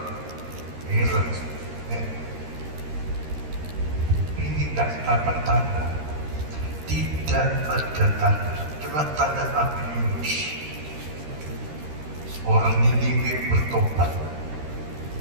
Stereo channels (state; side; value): late; left; 13 ms